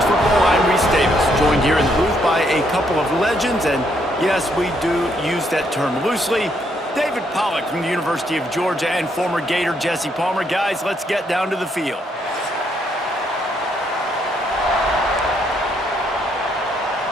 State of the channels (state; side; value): normal; both; correlation 0.73